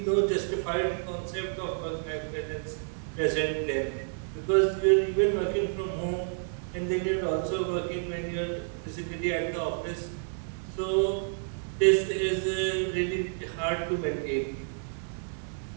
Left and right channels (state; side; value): silent; left; digital silence